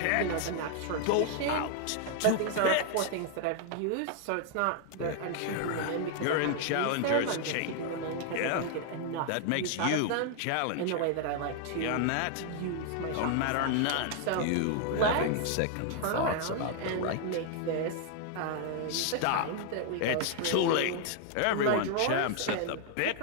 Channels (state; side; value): different; both; correlation 0.00